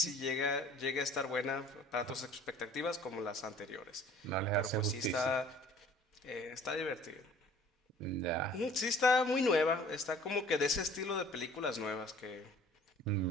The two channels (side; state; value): both; normal; correlation 0.50